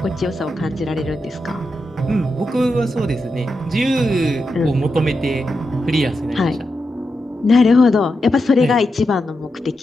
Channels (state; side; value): normal; both; correlation 0.87